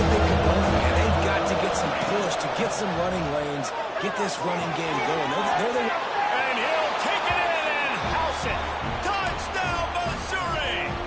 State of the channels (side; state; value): both; identical; correlation 1.00